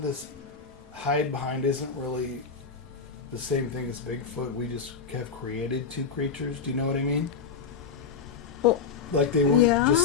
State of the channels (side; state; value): right; quieter; 5.6 dB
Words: this hide behind isn't really the same thing as Bigfoot. We just have created 2 creatures. Do you know what I mean? Well, like they weren't